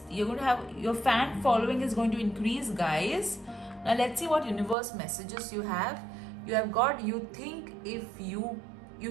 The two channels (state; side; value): drops out; left; at 4.8 s